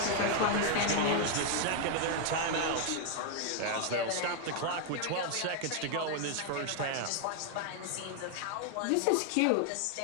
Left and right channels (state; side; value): different; both; correlation 0.00